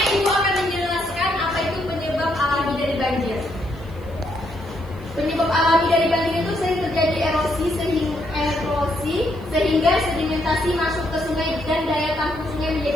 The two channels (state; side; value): noise; left; hiss, 30 dB below the sound